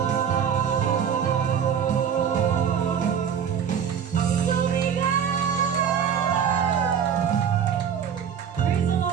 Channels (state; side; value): quieter; left; 8.0 dB